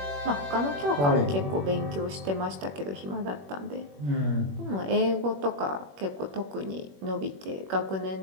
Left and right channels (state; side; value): late; left; 21 ms